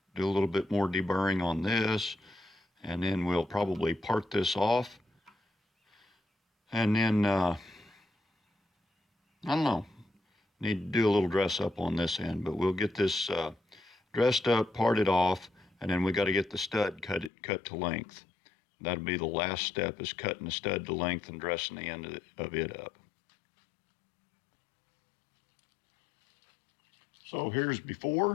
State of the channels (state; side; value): drops out; right; at 17.3 s